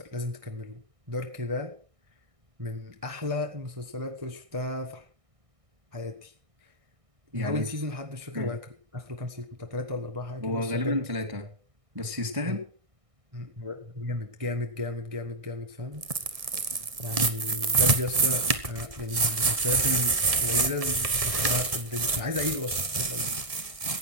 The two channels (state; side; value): late; left; 1.7 ms